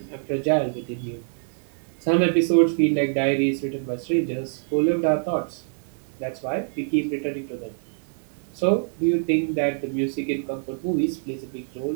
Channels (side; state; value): left; silent; digital silence